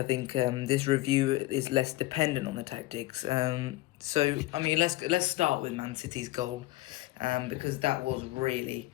think this review is less dependent on the tactics. So I mean, let's start with Man City's goal, because that was really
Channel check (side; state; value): right; quieter; 18.3 dB